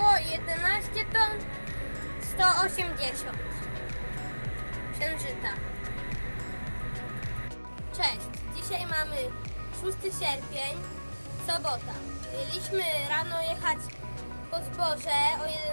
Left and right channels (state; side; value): inverted; both; correlation -1.00